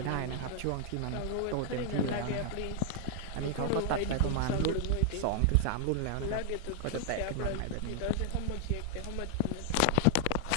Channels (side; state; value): both; different; correlation 0.00